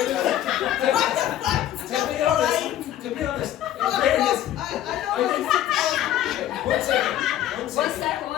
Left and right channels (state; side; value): quieter; right; 12.2 dB